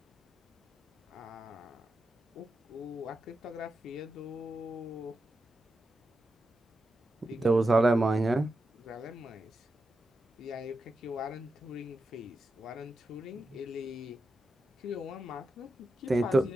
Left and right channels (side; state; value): both; normal; correlation 0.88